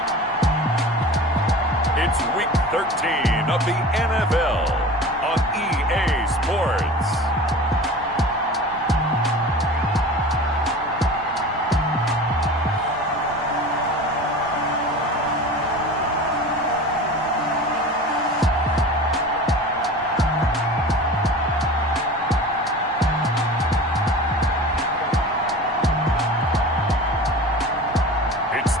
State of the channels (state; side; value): normal; both; correlation 0.36